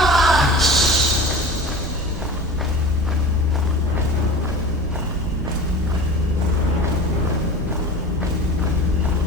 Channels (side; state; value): both; normal; correlation 0.35